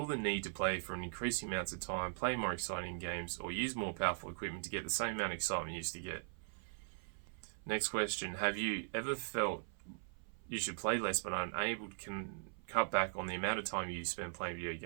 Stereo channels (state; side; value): silent; left; 51 dB below the other